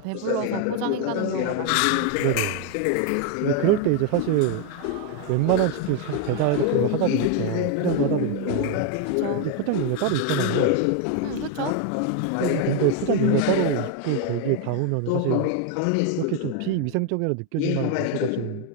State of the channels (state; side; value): different; both; correlation 0.01